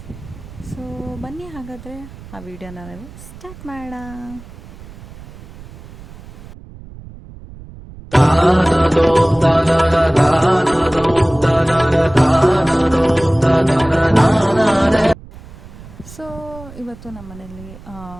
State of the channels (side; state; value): right; noise; rumble, 18 dB below the sound